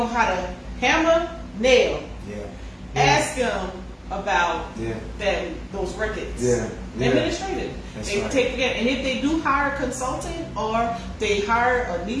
how to hammer, nail, ask them about those records. Administrative. They take it, and if they do hire a consultant or they hire a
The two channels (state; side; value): identical; both; correlation 1.00